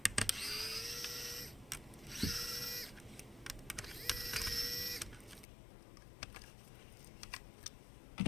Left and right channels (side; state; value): right; drops out; at 5.5 s